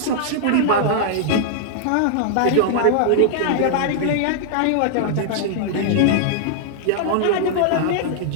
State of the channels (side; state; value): both; different; correlation -0.01